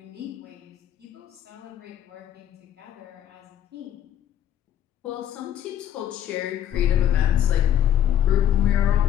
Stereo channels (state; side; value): quieter; right; 10.5 dB